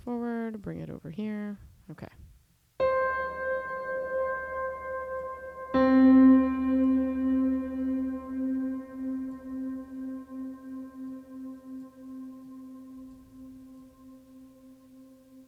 forward, bring it over here. Okay.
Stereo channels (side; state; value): both; identical; correlation 1.00